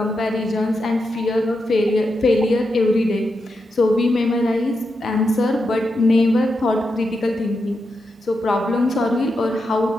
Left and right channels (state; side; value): normal; both; correlation 0.86